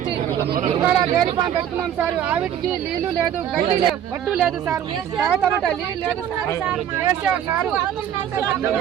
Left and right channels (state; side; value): quieter; left; 10.0 dB